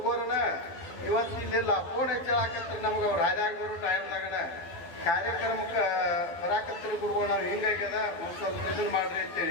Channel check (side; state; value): right; late; 12 ms